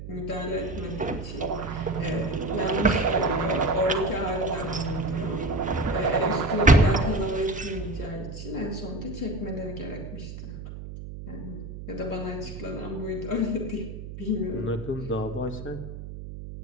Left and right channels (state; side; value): noise; right; hum, 10 dB below the sound